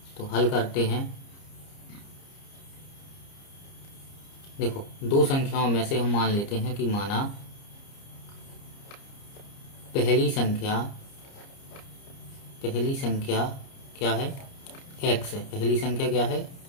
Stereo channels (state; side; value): late; right; 30 ms